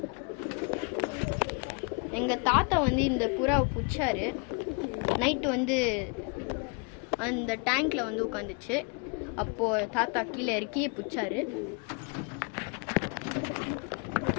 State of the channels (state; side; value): quieter; right; 34.3 dB